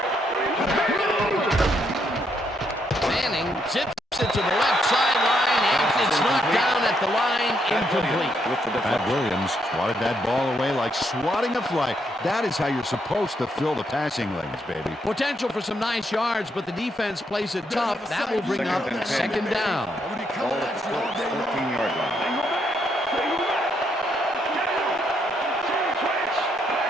Manning zips it to the left sideline, and it's knocked down at the line, incomplete. With the Pat deflection. Williams swatted that ball away like swatting a fly. That is how you're supposed to fill the passing lanes, baby. Potential for some nice yards, but the defense plays it tough. That will bring up second down. Ball at the Colts 14-yard line.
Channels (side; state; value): both; normal; correlation 0.76